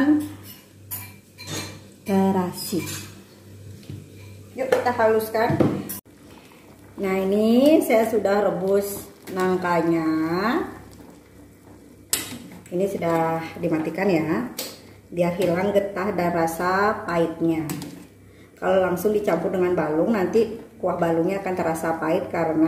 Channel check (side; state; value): both; identical; correlation 1.00